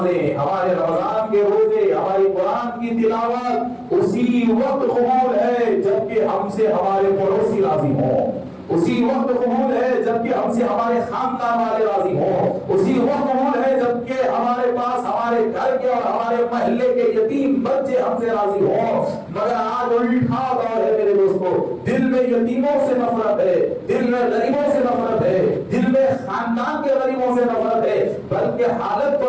ہمارے رمضان کے روزے، ہماری قرآن کی تلاوت اسی وقت قبول ہے جبکہ ہم سے ہمارے پڑوسی راضی ہوں. اسی وقت قبول ہے جبکہ ہم سے ہمارے خاندان والے راضی ہوں. اسی وقت قبول ہے جبکہ ہمارے پاس ہمارے گھر کے اور ہمارے محلے کے یتیم بچے ہم سے راضی ہوں. مگر آج الٹا دور ہے میرے دوستو. دل میں یتیموں سے نفرت ہے، دل میں غریبوں سے نفرت ہے، دل میں خاندان کے غریبوں سے نفرت ہے. بلکہ حالت تو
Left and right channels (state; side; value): identical; both; correlation 1.00